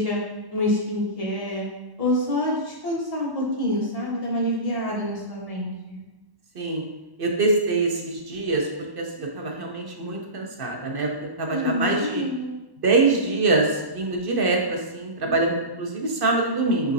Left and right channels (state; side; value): late; left; 1.1 ms